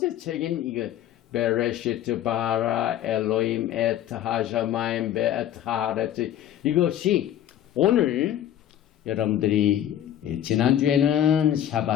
책인 이거 베레시트 바라 엘로임 엣 하샤마임 베엣 하레츠, 이것이 오늘 여러분들이 지난주에는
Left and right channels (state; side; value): quieter; right; 11.3 dB